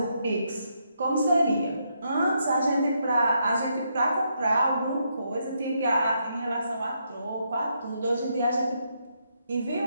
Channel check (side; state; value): both; inverted; correlation -0.78